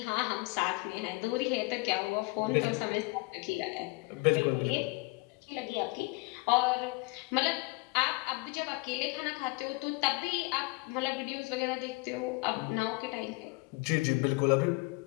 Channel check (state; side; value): quieter; right; 26.3 dB